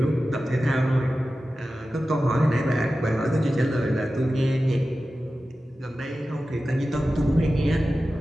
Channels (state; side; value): normal; both; correlation 0.94